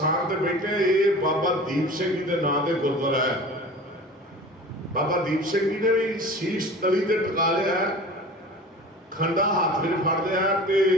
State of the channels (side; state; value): both; normal; correlation 0.39